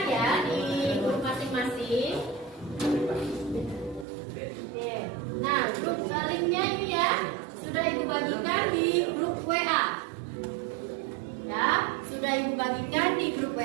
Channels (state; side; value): drops out; left; at 4.0 s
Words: ya di grup masing-masing. Oke. Nah, grup linknya ini ya sudah Ibu bagikan di grup WA. Ya, sudah sudah Ibu bagikan di grup